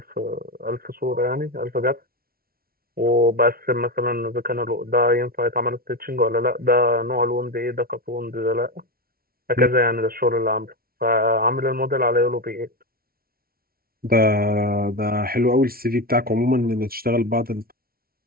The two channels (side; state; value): left; late; 0.44 ms